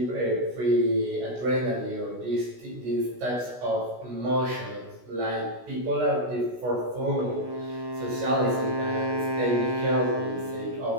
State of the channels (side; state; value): left; late; 16 ms